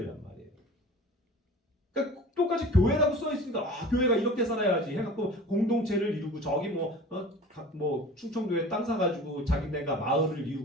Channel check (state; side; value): normal; both; correlation 0.40